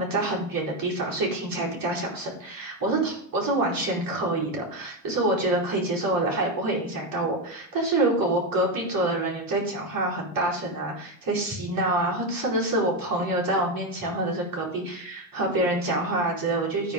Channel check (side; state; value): both; normal; correlation 0.10